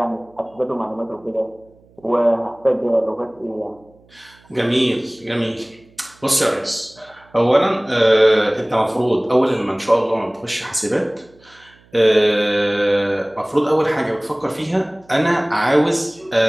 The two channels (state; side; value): noise; right; hum, 30 dB below the sound